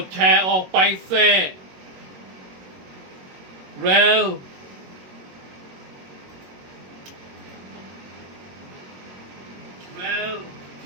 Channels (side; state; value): left; late; 21 ms